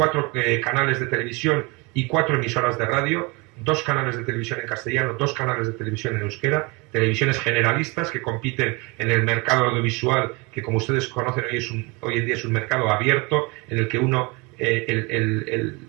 canales de televisión y 4 emisoras de radio, 2 canales de televisión en castellano, 2 canales de televisión en euskera, televisiones generalistas que compiten en el mercado audiovisual, que como ustedes conocen hoy en día es un mercado abierto, en el que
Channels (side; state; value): left; quieter; 27.6 dB